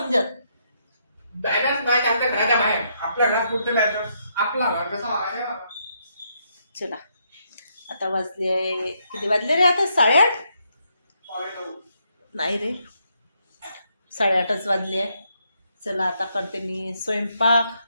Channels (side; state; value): both; inverted; correlation -0.76